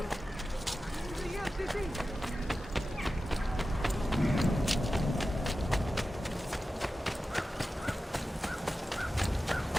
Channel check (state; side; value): normal; both; correlation 0.93